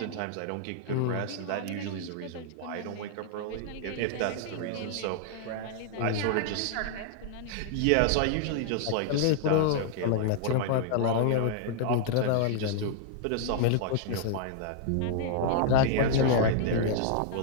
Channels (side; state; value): both; different; correlation -0.01